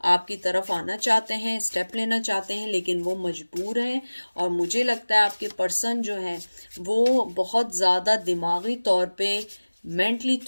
आपकी तरफ आना चाहते हैं, स्टेप लेना चाहते हैं, लेकिन वो मजबूर हैं। और मुझे लगता है आपके पर्सन जो है वो बहुत ज़्यादा दिमागी तौर पे, मेंटली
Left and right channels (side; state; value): both; inverted; correlation -1.00